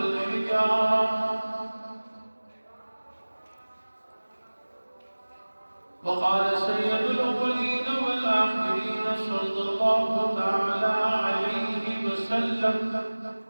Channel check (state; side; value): inverted; both; correlation -1.00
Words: وقال سيد الأولين والآخرين صلى الله تعالى عليه وسلم